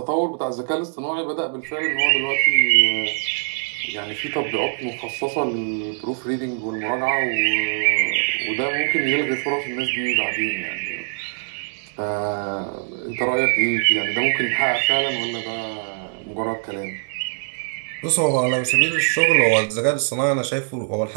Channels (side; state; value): left; silent; 64 dB below the other